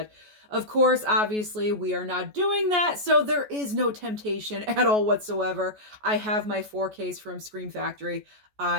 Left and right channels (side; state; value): left; late; 14 ms